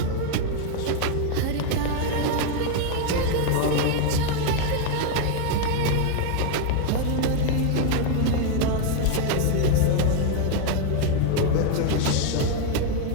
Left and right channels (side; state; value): both; different; correlation 0.01